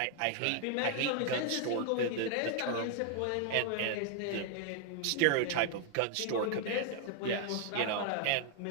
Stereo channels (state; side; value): different; both; correlation 0.00